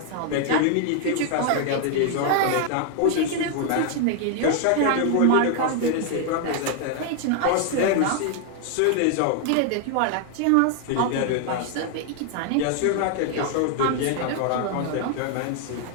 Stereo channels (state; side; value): different; both; correlation 0.00